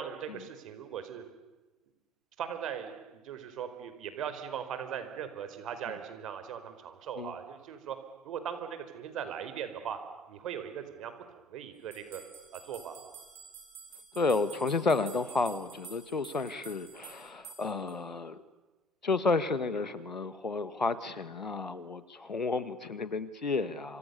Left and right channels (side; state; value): both; normal; correlation 0.53